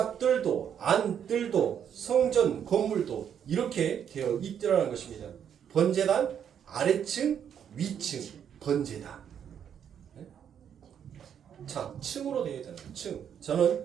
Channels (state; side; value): quieter; left; 8.6 dB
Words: 안뜰도 성전 건물도 이렇게 되어 있더라는 것입니다. 번제단 아래층 위층 번제단. 자, 층으로 되어 있다는 거예요. 층.